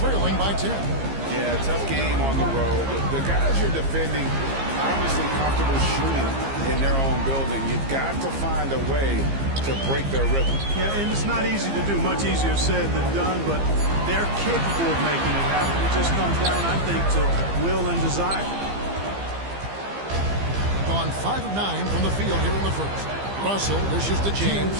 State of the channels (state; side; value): late; left; 15 ms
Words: by 10. Yeah, tough game on the road. The guys you're defending obviously comfortable shooting in their own building. You've got to find a way to break their rhythm. Yeah, and it's not easy to do. Much easier said than done, but they're capable of making it happen. It just comes down, I think, to will and desire. Gone 5 of 9 from the field here in the first. Russell dishes to